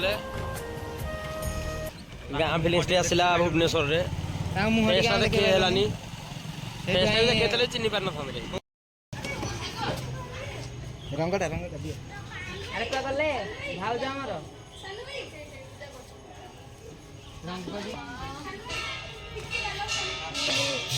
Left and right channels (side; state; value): both; identical; correlation 1.00